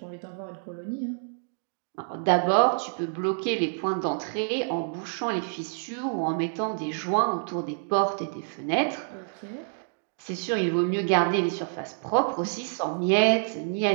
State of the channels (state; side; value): silent; left; digital silence